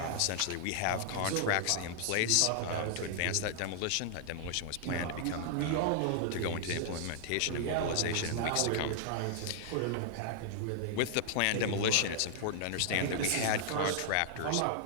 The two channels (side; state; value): both; different; correlation 0.00